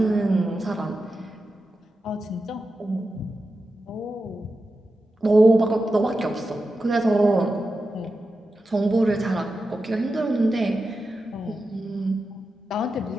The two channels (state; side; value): normal; both; correlation 0.91